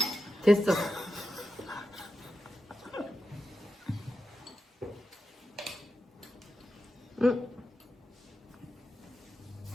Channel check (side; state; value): both; normal; correlation 0.89